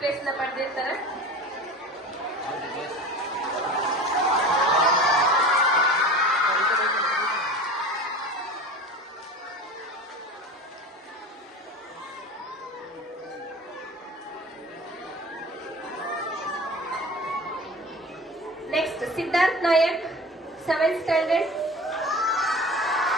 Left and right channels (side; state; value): both; normal; correlation 0.36